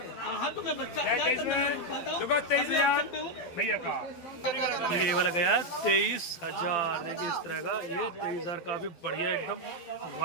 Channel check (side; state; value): right; late; 12 ms